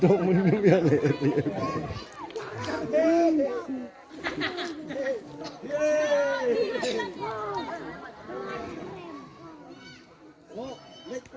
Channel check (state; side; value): identical; both; correlation 1.00